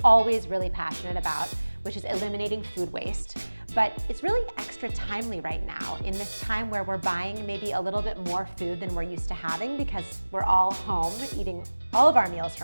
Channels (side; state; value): both; inverted; correlation -1.00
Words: always really passionate about, which is eliminating food waste. But it's really extra timely right now in this time where we're buying maybe a little bit more food than we're used to having because we're all home eating all of our meals